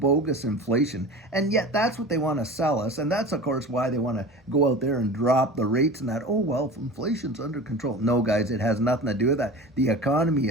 inflation, and yet that's what they want to sell us. And that's, of course, why they want to go out there and drop the rates and that, oh, well, inflation's under control. No, guys, it has nothing to do with that. The economy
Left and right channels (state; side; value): normal; both; correlation 0.35